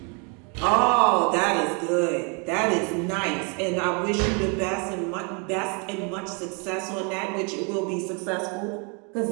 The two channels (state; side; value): quieter; left; 34.8 dB